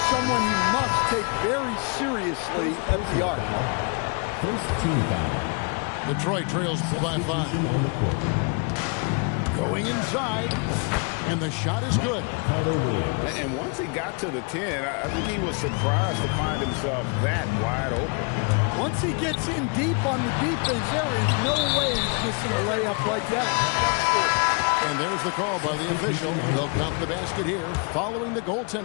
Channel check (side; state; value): right; quieter; 35.6 dB